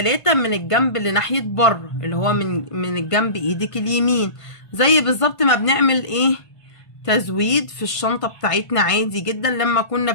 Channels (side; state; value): right; late; 1.6 ms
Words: من الجنب اللي ناحية بره، اللي هو من الجنب ايدك اليمين، زي بالظبط ما بنعمل ايه؟ تزويد في الشنطة بتاعتنا عادي جدا لما كنا